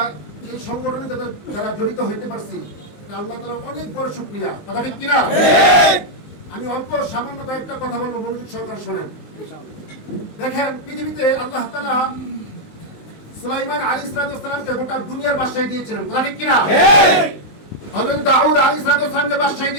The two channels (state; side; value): late; right; 19 ms